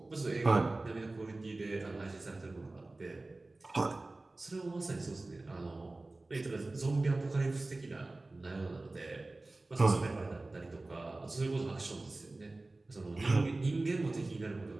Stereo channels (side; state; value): left; quieter; 3.0 dB